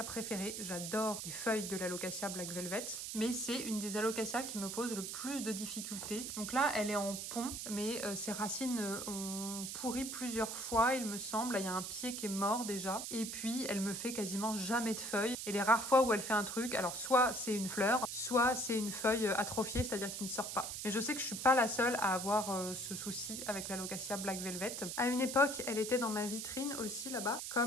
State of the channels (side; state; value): right; noise; hiss, 5 dB below the sound